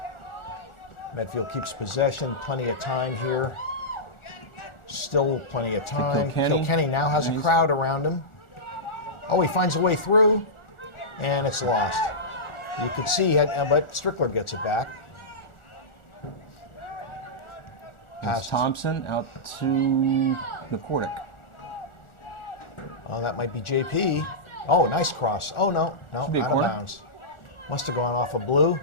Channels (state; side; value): late; right; 1.4 ms